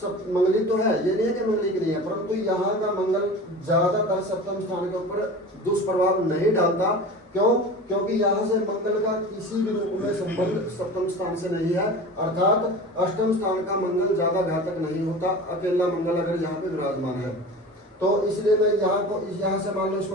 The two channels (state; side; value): normal; both; correlation 0.35